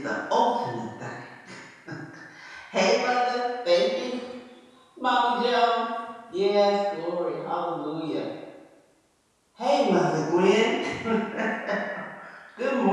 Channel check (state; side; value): identical; both; correlation 1.00